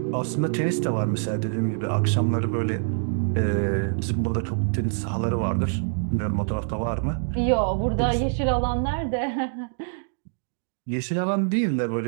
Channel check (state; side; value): silent; left; digital silence